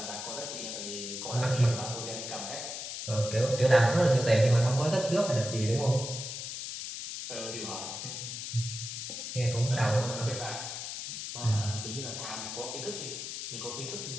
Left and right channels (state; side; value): noise; left; hiss, 6 dB below the sound